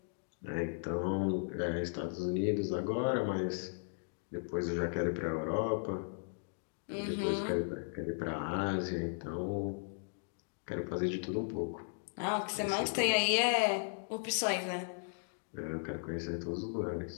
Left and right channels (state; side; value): silent; right; digital silence